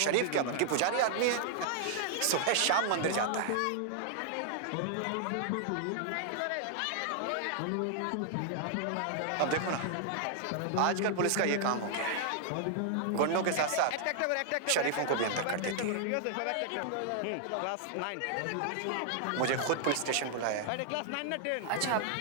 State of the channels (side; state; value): both; different; correlation -0.01